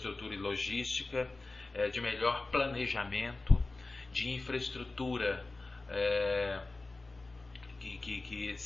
e logística, de melhor planejamento, de infraestrutura que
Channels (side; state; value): right; quieter; 3.3 dB